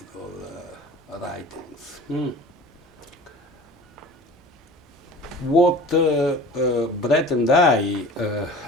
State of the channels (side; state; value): both; normal; correlation 0.40